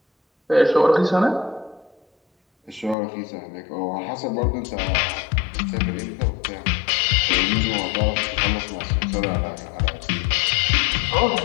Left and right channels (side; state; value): right; drops out; at 3.0 s